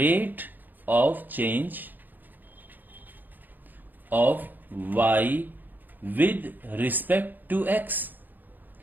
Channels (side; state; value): left; late; 0.087 ms